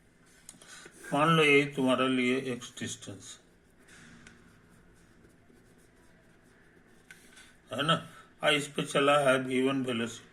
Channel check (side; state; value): both; identical; correlation 1.00